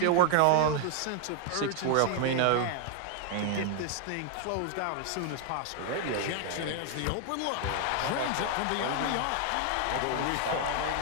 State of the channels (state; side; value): different; both; correlation 0.00